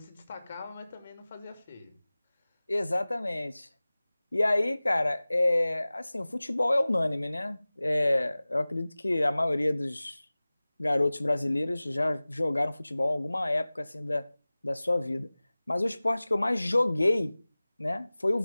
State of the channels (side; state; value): both; inverted; correlation -0.99